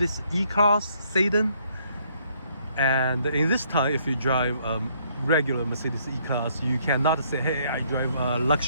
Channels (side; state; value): both; inverted; correlation -0.67